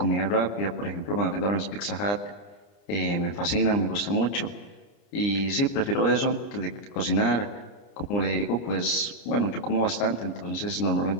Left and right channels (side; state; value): right; late; 29 ms